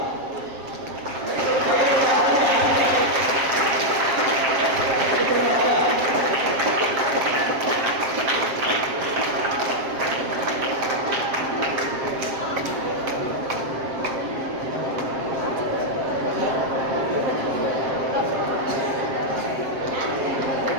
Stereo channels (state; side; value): late; left; 7.6 ms